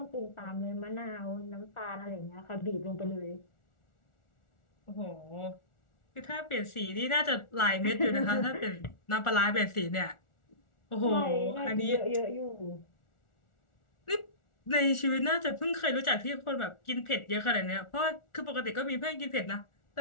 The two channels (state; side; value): late; right; 1.4 ms